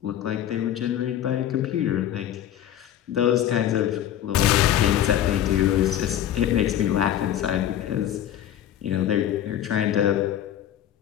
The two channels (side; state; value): right; quieter; 11.1 dB